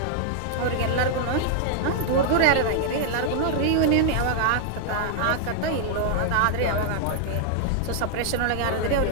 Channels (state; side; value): different; both; correlation -0.01